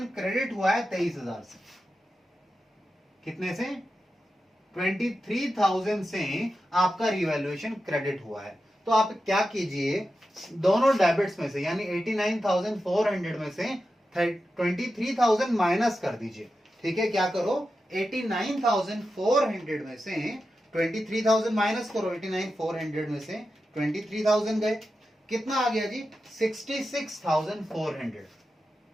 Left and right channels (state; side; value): normal; both; correlation 0.90